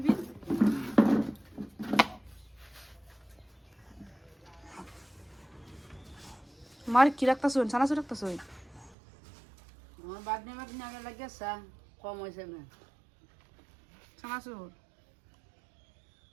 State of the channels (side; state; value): left; drops out; at 9.0 s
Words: মার কি রাখতাছ? ছানাচুর রাখতাছ? আমার বাদনে বাদনে আগে লাগিয়েছে কম হয়েছে না ছানাচুর